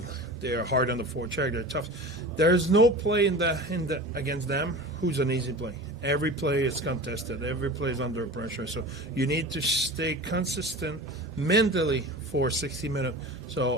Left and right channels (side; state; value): both; normal; correlation 0.33